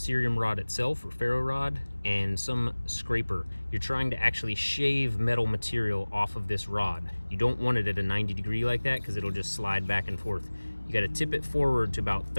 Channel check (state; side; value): inverted; both; correlation -1.00